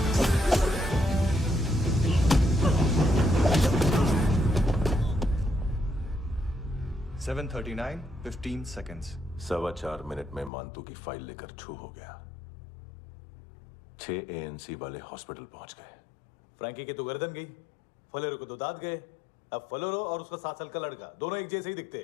7:39, 15 seconds. 4.25 मिनट में मानतू की फाइल लेकर छू हो गया। 6 ANC वाले हॉस्पिटल पहुंच गए। फ्रैंकी की तो गर्दन गई, फलेरो को तो दांत गए। अब फलेरो और उसका 7 साल का लड़का दोनों एक जैसे ही दिखते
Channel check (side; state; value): right; drops out; at 10.5 s